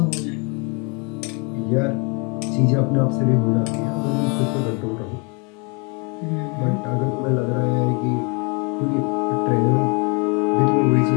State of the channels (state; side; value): quieter; right; 32.9 dB